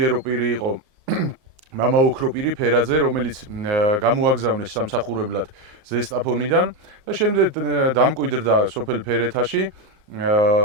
პირი იყო მამა ოქროპირი ფერაძე, რომელიც გამოაგზავნეს სამსახურებლად ზესტაფონიდან და შემდეგ დამკვიდრდა სოფელ ფერეთაში.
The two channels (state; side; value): late; left; 36 ms